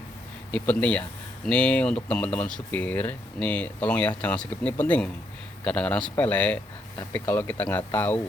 Ini penting ya. Ini untuk teman-teman supir. Nih, tolong ya jangan skip, ini penting. Kadang-kadang sepele, tapi kalau kita nggak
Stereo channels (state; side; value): normal; both; correlation 0.75